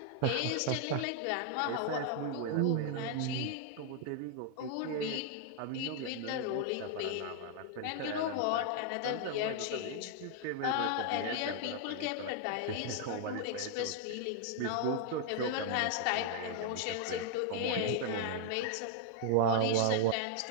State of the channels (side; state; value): both; different; correlation 0.00